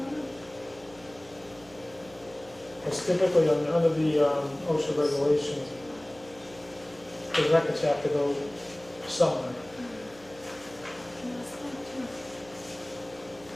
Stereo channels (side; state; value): right; noise; hum, 24 dB below the sound